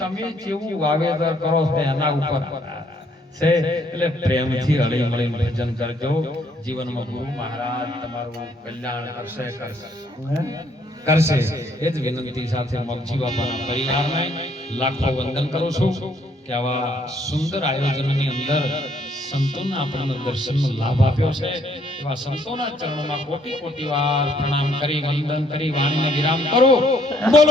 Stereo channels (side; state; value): both; normal; correlation 0.67